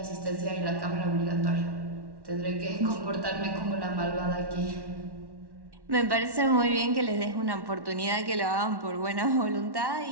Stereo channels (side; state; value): left; late; 1.1 ms